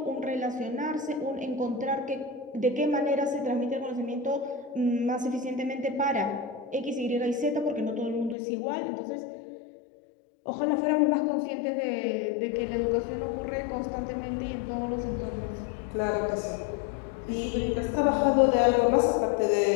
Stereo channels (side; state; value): right; drops out; at 8.3 s